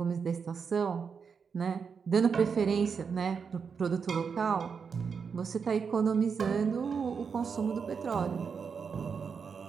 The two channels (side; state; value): left; quieter; 6.0 dB